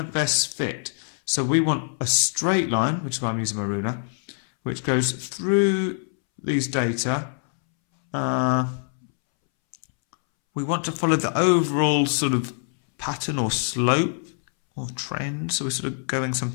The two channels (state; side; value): silent; right; 62 dB below the other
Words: best fit. So we want a straight line, which is why I'm using my ruler, which goes through these data. We want to follow the overall sort of pattern or slope or trend. So we're sort of going